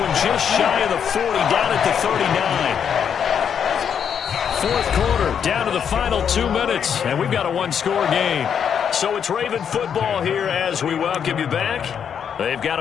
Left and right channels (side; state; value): right; quieter; 7.8 dB